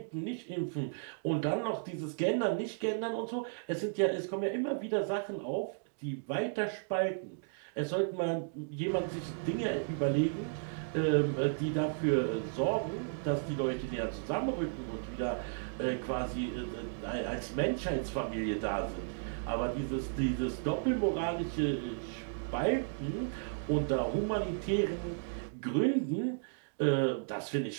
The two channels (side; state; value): left; silent; digital silence